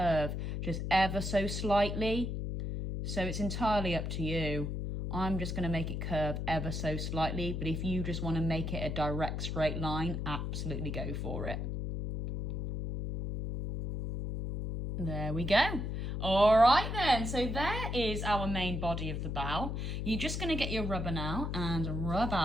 just ever so slightly. So it's entirely up to you. I'm just going to make it curve ever so slightly, but if you just want to make it a direct straight line, absolutely go for it. There we go. All right then, so there is our main body of the bow. You're just going to get your rubber now and rub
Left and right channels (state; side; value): noise; left; hum, 3 dB below the sound